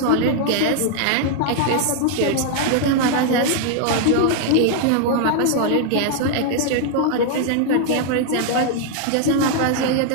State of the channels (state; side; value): different; both; correlation 0.00